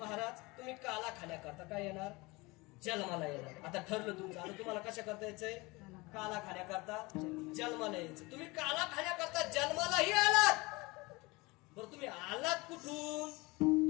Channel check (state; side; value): quieter; right; 24.0 dB